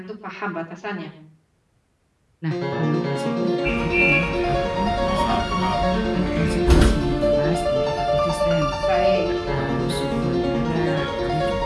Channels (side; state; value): both; identical; correlation 1.00